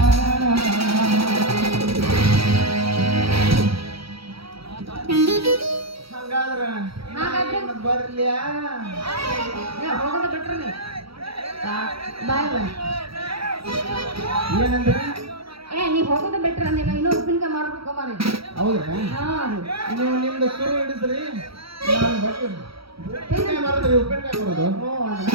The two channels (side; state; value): left; late; 0.75 ms